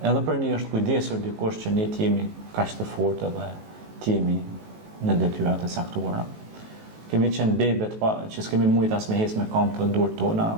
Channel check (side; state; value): left; late; 19 ms